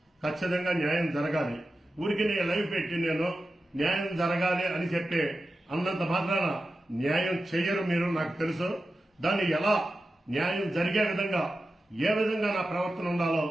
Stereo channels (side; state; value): both; normal; correlation 0.92